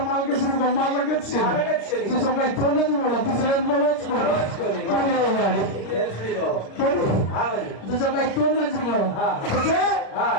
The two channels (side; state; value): right; late; 36 ms